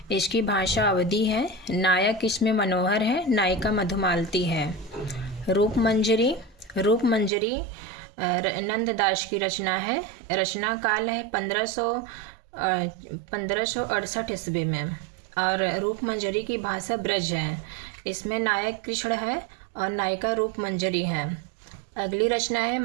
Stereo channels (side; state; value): left; drops out; at 7.3 s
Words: इसकी भाषा अवधी है। नायक इसमें मनोहर है, नायिका मधुमालती है। रूप मंजरी नंददास की रचना है। रचना काल है 1568 ईस्वी में और रूप मंजरी की भाषा ब्रज है। इसमें नायक कृष्ण है और नायिका रूप मंजरी है। अगली रचना है